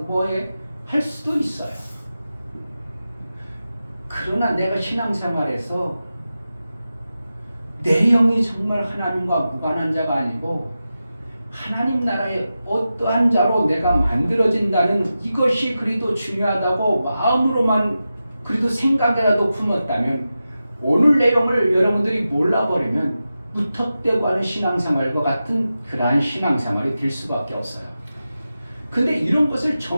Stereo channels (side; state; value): both; inverted; correlation -0.92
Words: 할 수도 있어요. 그러나 내가 신앙생활에서 내 영이 정말 하나님과 무관한 자가 아니고 하나님 나라의 어떠한 자로 내가 만들어진다는 이것이 그리도 중요하다고 마음으로만 그래도 생각이라도 품었다면 오늘 내용을 여러분들이 몰라버리면 무턱대고 하는 신앙생활과 같은 그러한 신앙생활이 될 수밖에 없어요. 근데 이런 것을